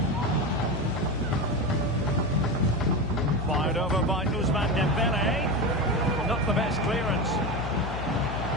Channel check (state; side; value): noise; left; hum, 6 dB below the sound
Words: Fired over by Ousmane Dembele. Not the best clearance.